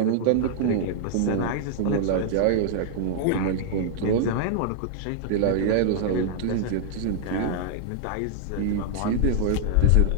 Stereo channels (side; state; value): both; different; correlation -0.01